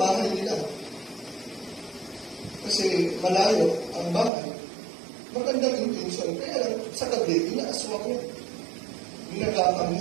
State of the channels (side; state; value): left; drops out; at 4.3 s